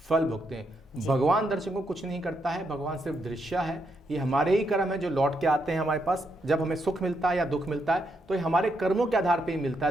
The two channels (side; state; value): both; normal; correlation 0.79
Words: फल भुगते हैं। भगवान दर्शकों को कुछ नहीं करता है, भगवान सिर्फ दृश्य है। ये हमारे ही कर्म है जो लौट के आते हैं हमारे पास। जब हमें सुख मिलता है या दुख मिलता है तो ये हमारे कर्मों के आधार पर ही मिलता